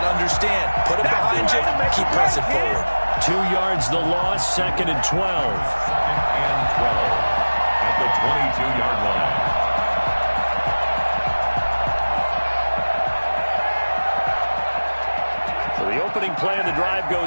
to understand, put it behind you, keep pressing forward. 2 yards the loss, 2nd and 12. 2nd and 12 at the 22-yard line. So the opening play of the drive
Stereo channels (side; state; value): both; inverted; correlation -1.00